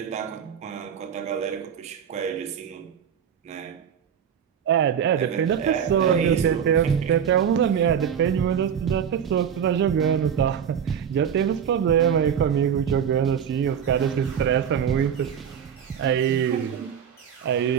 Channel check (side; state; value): left; quieter; 8.2 dB